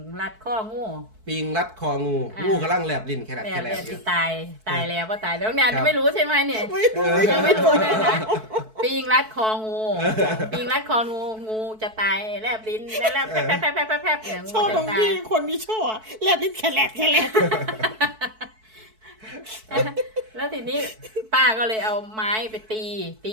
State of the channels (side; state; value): left; late; 4.6 ms